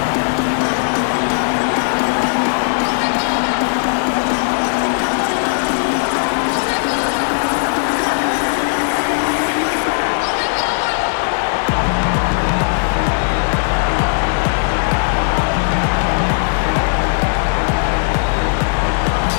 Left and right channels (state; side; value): silent; right; digital silence